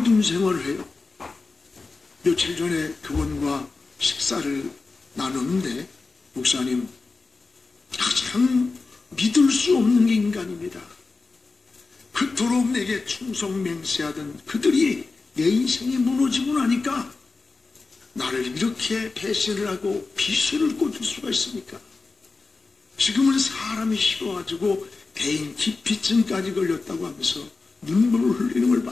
생활을 해요. 며칠 전에 그분과 식사를 나눴는데, 목사님, 가장 믿을 수 없는 게 인간입니다. 그토록 내게 충성맹세하던 그들이 내 인생이 무너지고 나니까 나를 이렇게 배신을 하고 비수를 꽂을 수가 있습니까? 지금은 사람이 싫어가지고 대인 기피증까지 걸렸다고 하면서 눈물을 흘리는 걸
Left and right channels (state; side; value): quieter; right; 3.9 dB